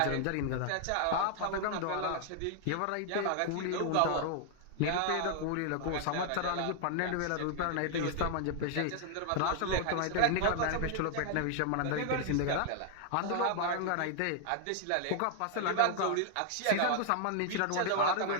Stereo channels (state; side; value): different; both; correlation 0.00